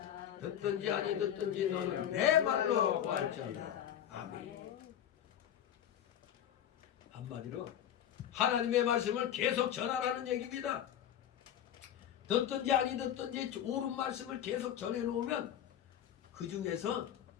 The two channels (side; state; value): right; quieter; 10.3 dB